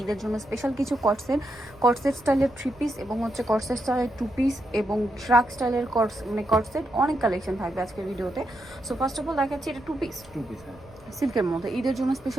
ঈদের জন্য স্পেশাল কিছু কটসেট স্টাইলের 3 পিস এবং হচ্ছে কটসেট স্টাইলের 2 পিস এবং ট্রাক স্টাইলের কটসেট অনেক কালেকশন থাকবে আজকের ভিডিওতে। সো ফার্স্ট অফ অল দেখাচ্ছি এটা 2 পিস সিল্কের মধ্যে ঈদের জন্য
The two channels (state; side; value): noise; right; rumble, 25 dB below the sound